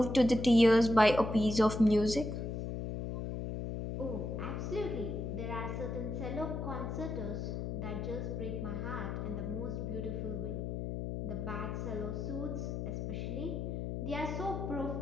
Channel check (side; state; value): left; noise; hum, 3 dB below the sound